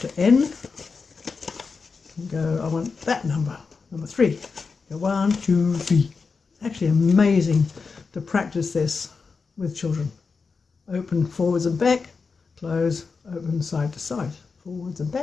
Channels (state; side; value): quieter; right; 4.8 dB